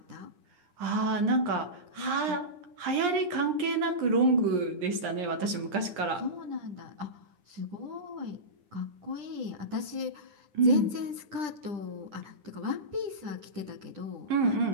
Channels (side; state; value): left; late; 9.9 ms